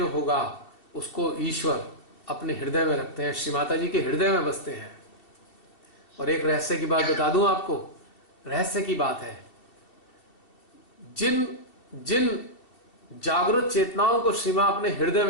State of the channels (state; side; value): late; right; 2.7 ms